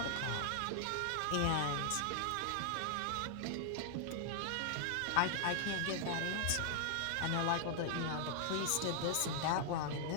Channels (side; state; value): both; different; correlation 0.00